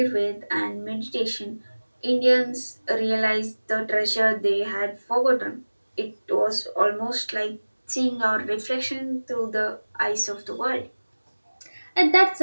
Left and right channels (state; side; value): inverted; both; correlation -1.00